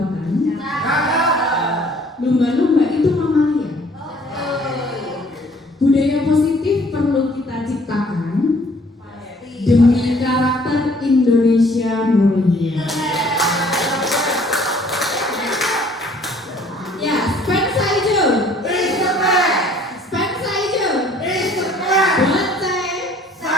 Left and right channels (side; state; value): both; normal; correlation 0.57